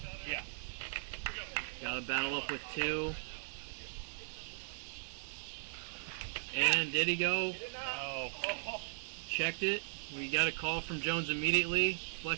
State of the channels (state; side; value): silent; left; digital silence